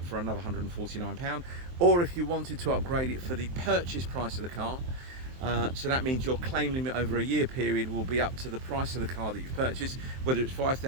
for another £149. Or if you wanted to upgrade it for the purchase price of the car, so that means your claim limit over a year period will be up to the price of the car that you've purchased, whether it's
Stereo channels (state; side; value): late; left; 23 ms